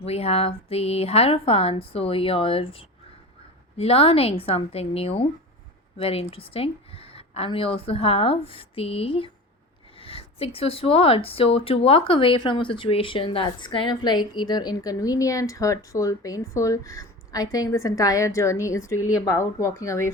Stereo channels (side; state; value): both; normal; correlation 0.31